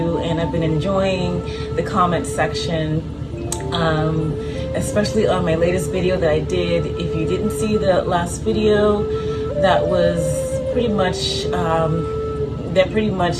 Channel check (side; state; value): both; identical; correlation 1.00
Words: and I've been enjoying the comment section, especially on my latest video that I did. If you didn't see the last video, that was pretty much that pretty